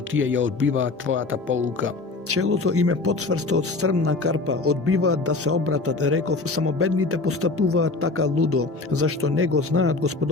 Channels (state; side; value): quieter; right; 3.6 dB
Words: тие ја одбиваат твојата полука. Челото им е подсврсто од стрмна карпа, одбиваат да се обратат, реков, само бедните постапуваат така лудо, зашто не го знаат